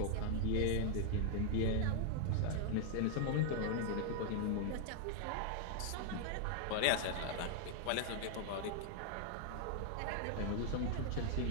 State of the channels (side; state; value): both; different; correlation 0.00